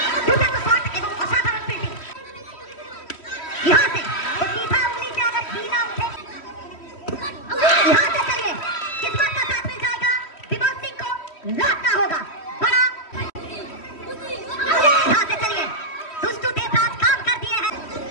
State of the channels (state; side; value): late; right; 3.1 ms